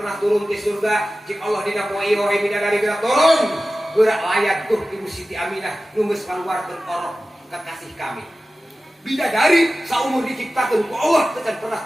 turun ke surga. Cik Allah dina poe ieu we bidadari gerak turun. Gerak layat tuh Ibu Siti Aminah nu geus kaluarkeun orok kekasih kami. Bidadari saumur diciptakeun ku Allah teu pernah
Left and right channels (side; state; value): both; normal; correlation 0.95